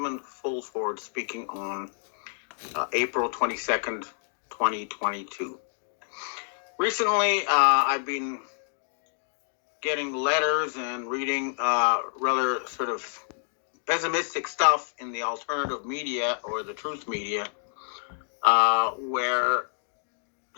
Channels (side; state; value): right; silent; digital silence